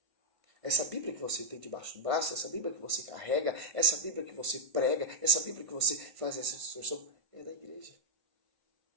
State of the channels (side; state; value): left; late; 1.5 ms